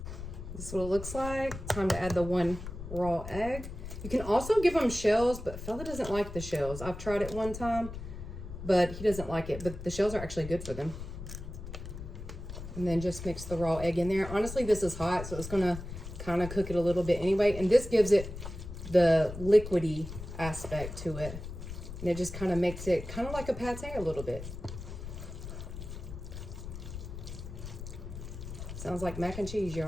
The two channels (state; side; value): noise; left; rumble, 9 dB below the sound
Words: This is what it looks like. Time to add the one raw egg. You can also give them shells, but Fella doesn't like the shells. I've tried it one time, but he doesn't like it. But the shells are actually good for them. And then just mix the raw egg in there. Honestly, this is hot, so it's gonna kind of cook it a little bit anyway. And this gives it the liquidy aspect to it. And it just kind of makes it kind of like a pate a little bit. Sounds like mac and cheese,